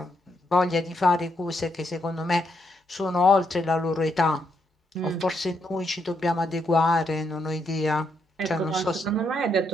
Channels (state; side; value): normal; both; correlation 0.77